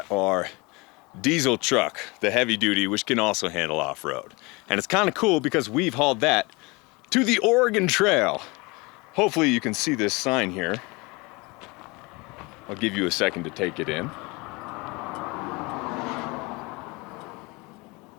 our diesel truck, the heavy duty, which can also handle off-road. And it's kind of cool because we've hauled that to the Oregon Trail. Hopefully you can see this sign here. I'll give you a second to take it in.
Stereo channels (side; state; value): right; quieter; 26.0 dB